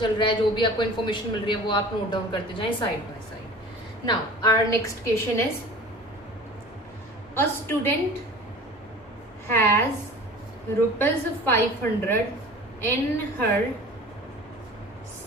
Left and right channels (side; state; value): both; normal; correlation 0.41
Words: रहा है, जो भी आपको इन्फॉर्मेशन मिल रही है वो आप नोट डाउन करते जाएं side by side. Now our next question is a student has rupees 500 in her